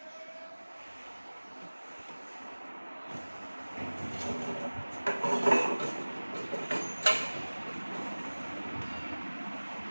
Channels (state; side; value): inverted; both; correlation -1.00